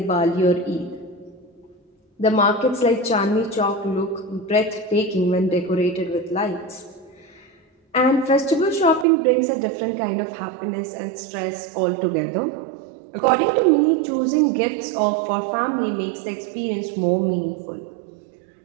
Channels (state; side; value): drops out; left; at 9.1 s